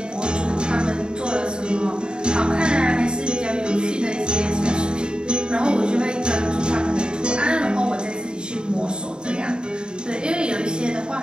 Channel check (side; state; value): left; late; 0.049 ms